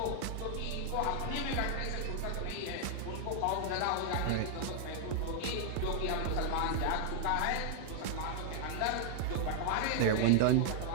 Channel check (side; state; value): both; different; correlation 0.00